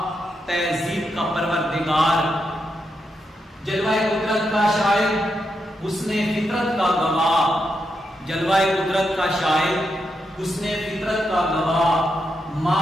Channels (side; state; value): both; normal; correlation 0.83